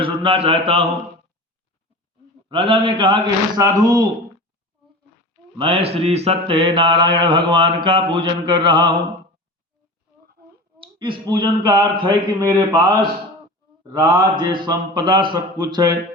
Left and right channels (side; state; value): both; normal; correlation 0.33